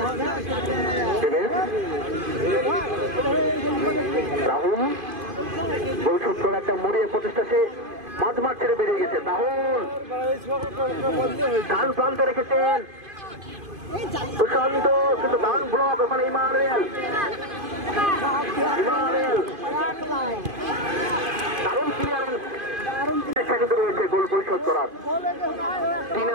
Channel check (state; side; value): late; left; 2.5 ms